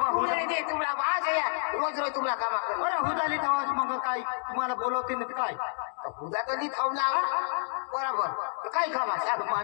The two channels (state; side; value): silent; right; digital silence